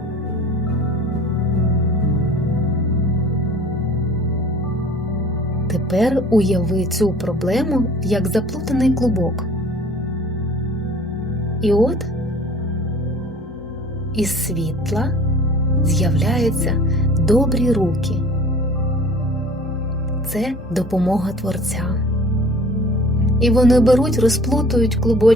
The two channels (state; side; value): normal; both; correlation 0.47